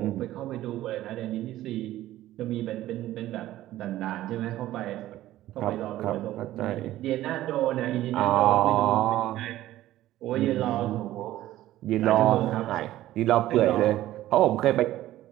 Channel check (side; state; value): left; quieter; 14.6 dB